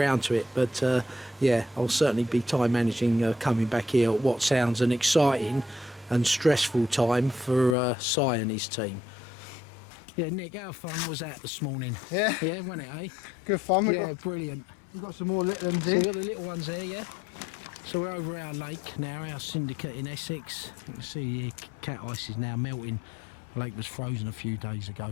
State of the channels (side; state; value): right; drops out; at 7.8 s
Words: to it. But yeah, I'll certainly be time managing coming back here at what sounds an exciting and stressful time for Si and his team. Yeah, Nick, how fun was that this morning? Yeah. Yeah, wasn't it, eh? Good fun. Yeah, brilliant. We've got some more little ones So here. we've got the little ones there, yeah? So we're over our lake now, our syndicate in Essex. You can see here, cat ice is now melting. The lake was frozen a few days